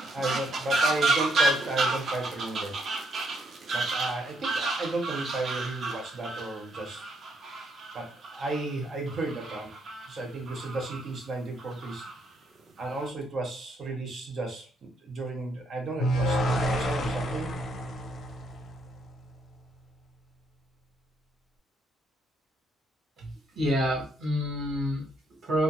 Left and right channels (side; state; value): both; normal; correlation 0.73